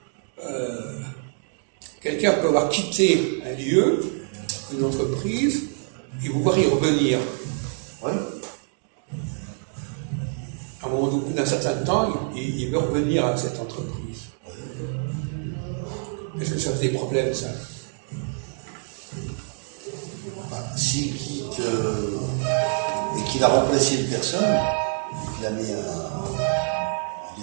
quelqu'un peut avoir quitté un lieu, une entreprise, et vouloir y revenir. Oui. À un moment au bout d'un certain temps, il veut revenir à cette entreprise. Est-ce que ça fait des problèmes, ça? S'il quitte et qu'il a remplacé une personne, qu'il a mis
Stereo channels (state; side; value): silent; left; 56 dB below the other